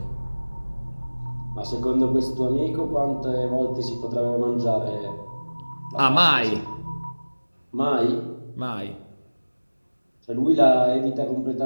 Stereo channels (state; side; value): inverted; both; correlation -1.00